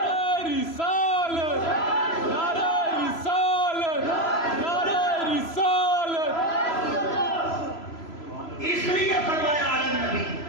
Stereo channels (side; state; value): right; late; 3.0 ms